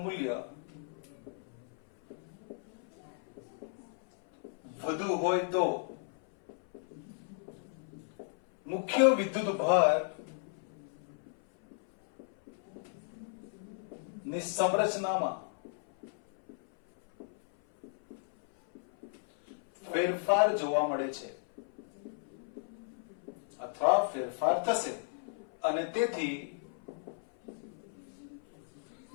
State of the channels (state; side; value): silent; right; 55 dB below the other